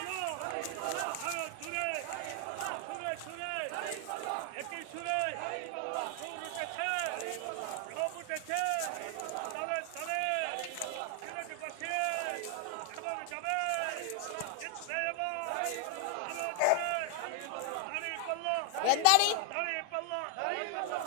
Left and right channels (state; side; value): different; both; correlation 0.00